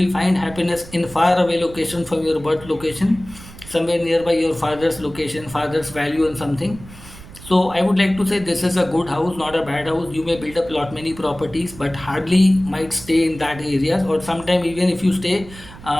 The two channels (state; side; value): noise; right; rumble, 17 dB below the sound